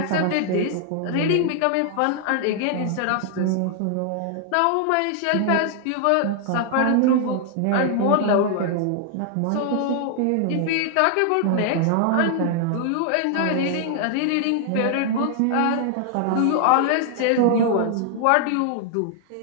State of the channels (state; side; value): different; both; correlation 0.00